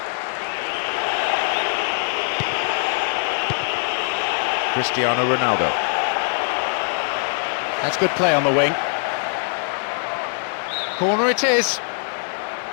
Cristiano Ronaldo. That's good play on the wing. Corner it is.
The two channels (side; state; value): right; silent; 57 dB below the other